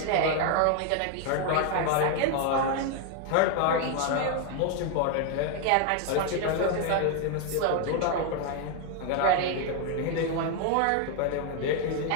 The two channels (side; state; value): both; different; correlation 0.01